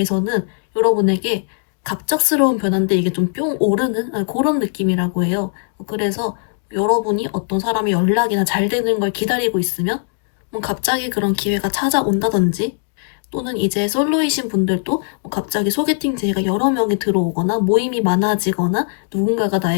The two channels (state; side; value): silent; right; digital silence